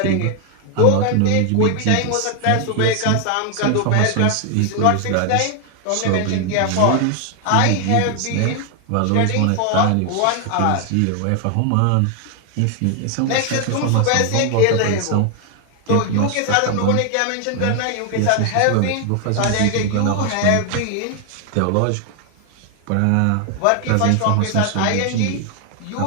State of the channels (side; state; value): both; different; correlation 0.00